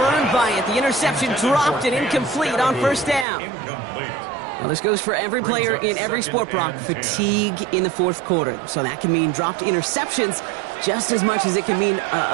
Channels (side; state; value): left; drops out; at 3.2 s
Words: by it. The interception dropped and incomplete on 1st down. Well, this goes for every player in every sport, Brock. Fatigue in the 4th quarter. So that can mean dropped interceptions just as much as it can mean